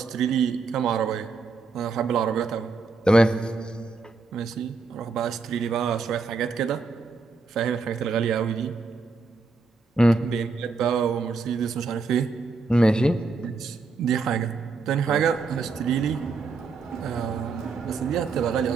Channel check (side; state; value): left; quieter; 4.2 dB